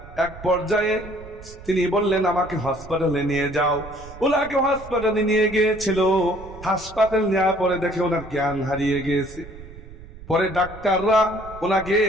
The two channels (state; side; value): noise; right; rumble, 16 dB below the sound